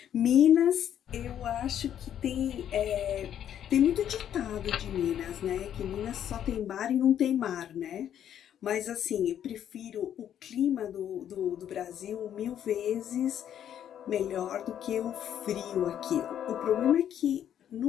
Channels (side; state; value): right; quieter; 10.0 dB